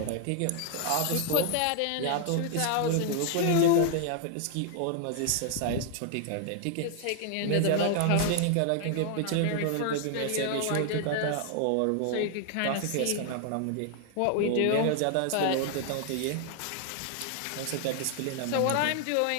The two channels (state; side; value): different; both; correlation 0.00